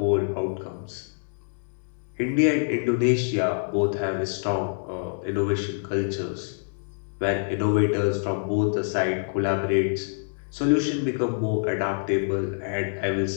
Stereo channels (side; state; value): right; silent; digital silence